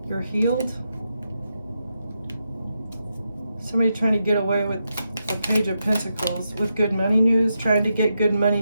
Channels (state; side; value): inverted; both; correlation -0.85